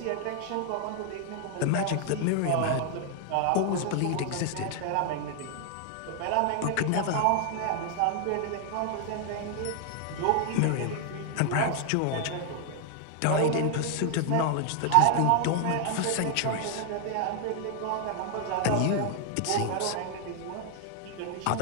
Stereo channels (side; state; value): both; different; correlation 0.00